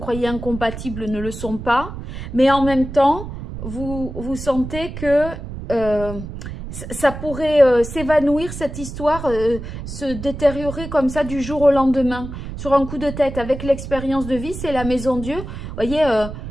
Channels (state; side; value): noise; right; rumble, 9 dB below the sound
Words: incompatibles, ne le sont pas. Mais en même temps, vous sentez que ça pourrait s'évanouir, cette histoire, se détériorer comme ça du jour au lendemain, sur un coup de tête. Avec l'expérience de vie, c'est la maison Dieu. Vous voyez,